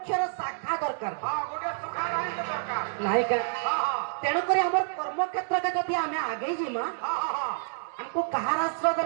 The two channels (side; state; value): left; silent; digital silence